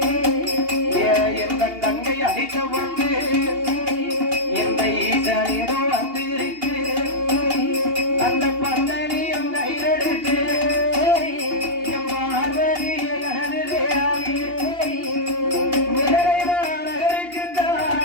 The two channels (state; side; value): late; left; 2.8 ms